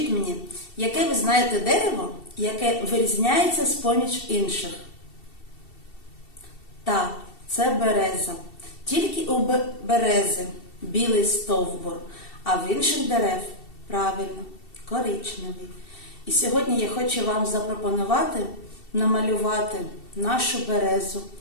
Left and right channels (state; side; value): late; right; 2.7 ms